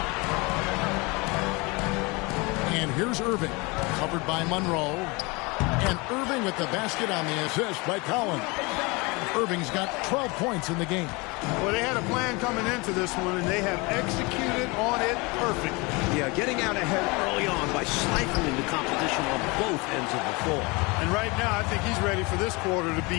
And here's Irving, covered by Monroe. And Irving with the basket on the assist by Collins. Irving's got 12 points in the game. Well, they had a plan coming into this one, and they have executed on it perfectly. Yeah, getting out ahead early on by stifling the competition on both ends of the floor. And right now, I think he's ready for this quarter to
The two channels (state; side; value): quieter; right; 26.6 dB